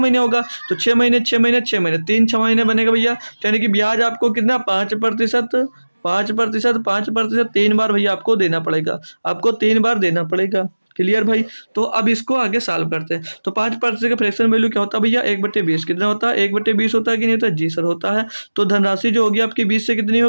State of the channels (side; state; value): both; inverted; correlation -1.00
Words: होगा, तो 6 महीने 6 महीने 6 महीने 3 6 महीने बनेगा भैया। तो यानी कि ब्याज आपको कितना, 5%, 5%, 5%, 3 बार भैया आपको देना पड़ेगा, आपको 3 बार देना पड़ेगा। क्लियर भाई। तो अब इसको आगे सॉल्व करते हैं। तो 5% का फ्रैक्शन वैल्यू क्या होता है भैया, 1/20 कितना होता है, 1/20 होता है कि नहीं होता, जी सर होता है। तो धनराशि जो होगी आपकी 20 से कितनी हो